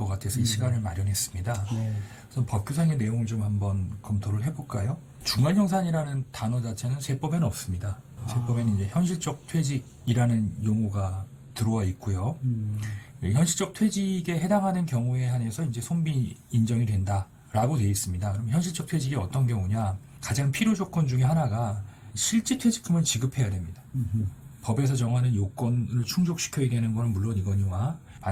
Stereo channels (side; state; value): both; identical; correlation 1.00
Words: 같아서 이 시간을 마련했습니다. 그래서 법규상의 내용을 좀 한번 검토를 해볼까요? 중간정산이라는 단어 자체는 세법에는 없습니다. 세법에는 이제 현실적 퇴직이라는 용어가 들어와 있고요. 현실적 퇴직에 해당하는 경우에 한해서 이제 손비 인정이 된다라고 되어 있습니다. 그럼 현실적 퇴직이 어떤 경우냐? 가장 필요 조건 중에 하나가 실제 퇴직금을 지급해야 됩니다. 법에서 정하는 요건을 충족시켜야 되는 건 물론 이거니와